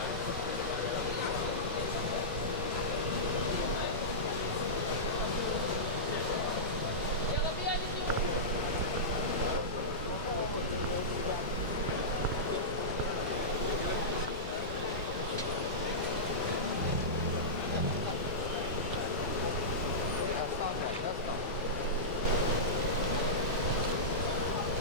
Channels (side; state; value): both; normal; correlation -0.16